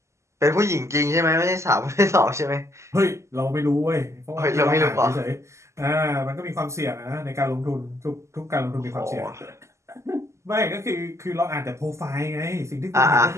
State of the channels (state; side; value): late; left; 0.13 ms